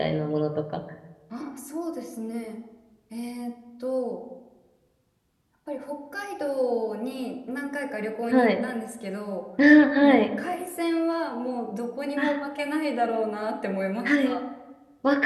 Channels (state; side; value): identical; both; correlation 1.00